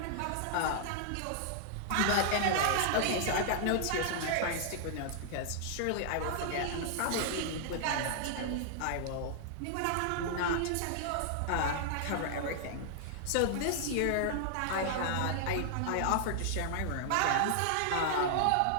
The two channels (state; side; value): different; both; correlation -0.01